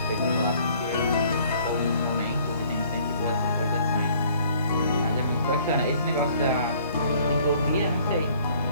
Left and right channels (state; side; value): inverted; both; correlation -0.58